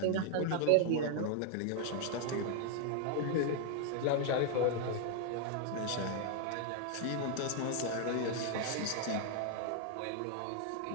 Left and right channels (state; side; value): different; both; correlation 0.00